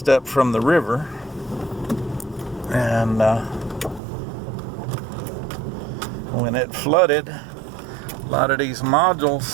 up from the river. And when it flooded, a lot of these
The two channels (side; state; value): left; drops out; at 4.0 s